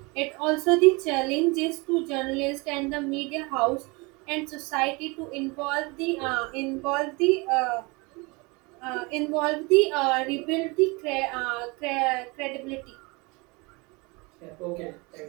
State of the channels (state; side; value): quieter; left; 27.0 dB